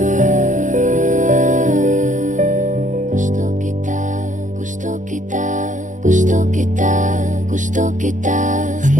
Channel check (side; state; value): left; late; 0.37 ms